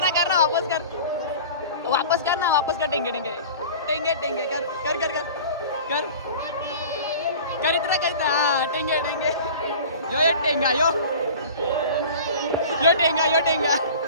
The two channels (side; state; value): both; inverted; correlation -0.40